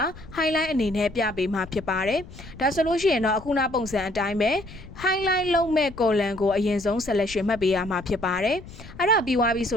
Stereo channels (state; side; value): noise; left; rumble, 17 dB below the sound